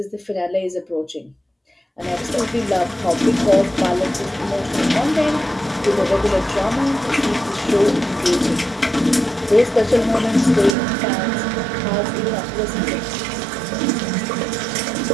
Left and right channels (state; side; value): drops out; left; at 10.8 s